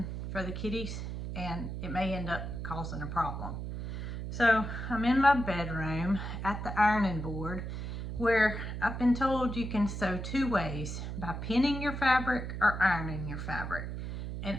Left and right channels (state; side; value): noise; right; hum, 6 dB below the sound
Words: for the kitties and it may end up causing a problem. So I'm in my bedroom at the ironing board where I've been told you can sew two ways, by pinning your fabric or ironing your fabric. And